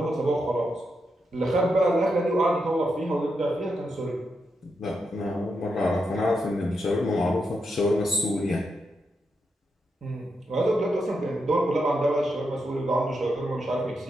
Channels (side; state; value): both; normal; correlation 0.84